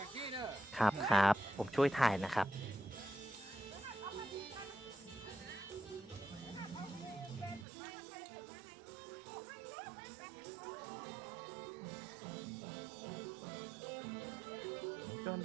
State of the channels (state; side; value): drops out; left; at 7.7 s